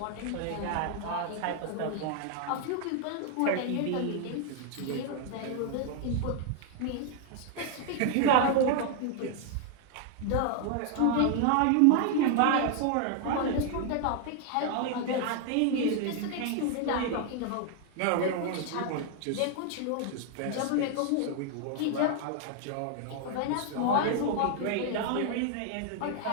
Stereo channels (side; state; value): both; different; correlation 0.00